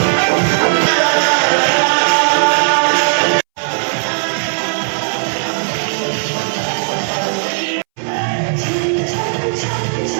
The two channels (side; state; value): left; silent; 67 dB below the other